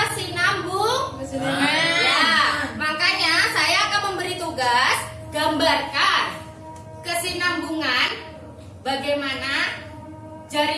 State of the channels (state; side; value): identical; both; correlation 1.00